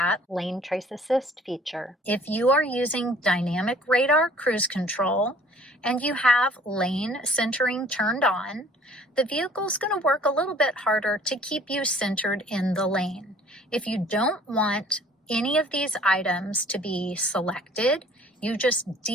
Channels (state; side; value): normal; both; correlation 0.53